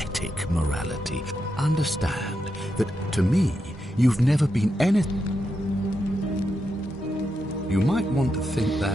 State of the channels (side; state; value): both; normal; correlation 0.85